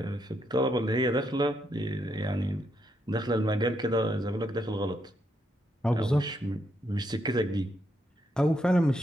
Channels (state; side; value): normal; both; correlation 0.78